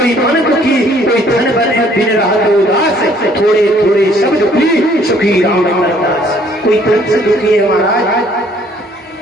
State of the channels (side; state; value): both; normal; correlation 0.61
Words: मन दुखी, कोई धन बने बिन रहा तो उदास, थोड़े थोड़े सब दुखी सुखी राम दास। कोई तन से दुखी है महाराज,